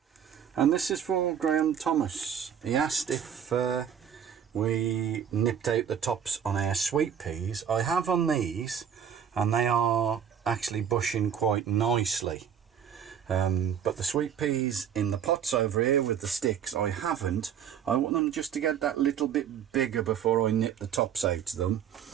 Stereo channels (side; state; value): left; quieter; 8.4 dB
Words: And this is for Graham Thomas. He asked if we nipped out the tops on our sweet peas. I have on these, and they are actually bushing quite nicely. But the sweet peas in the pots over here with the sticks, I haven't. I want them just to get that little bit bigger before I nip the tops out of them,